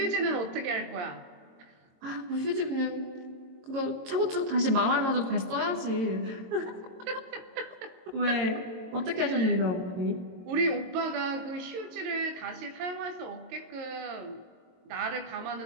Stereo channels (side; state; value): left; late; 22 ms